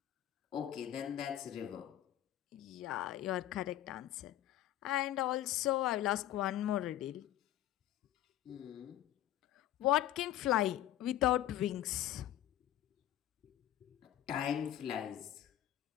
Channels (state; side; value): quieter; right; 12.9 dB